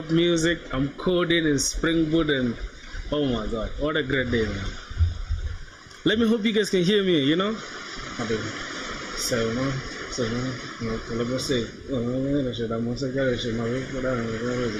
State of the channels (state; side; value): identical; both; correlation 1.00